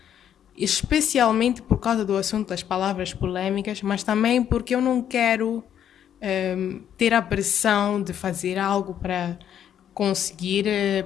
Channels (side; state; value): right; quieter; 9.7 dB